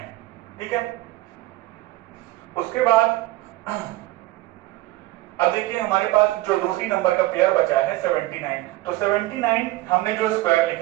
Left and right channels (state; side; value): quieter; left; 17.9 dB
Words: ठीक है। उसके बाद अब देखिए हमारे पास जो दूसरी नंबर का पेयर बचा है 79। तो 79 हमने जो स्क्वायर